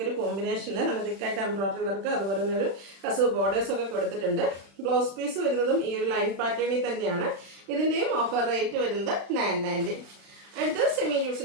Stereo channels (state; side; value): late; left; 36 ms